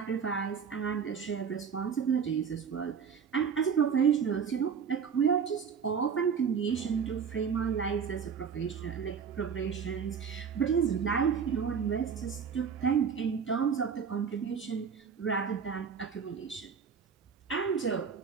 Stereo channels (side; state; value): left; quieter; 6.7 dB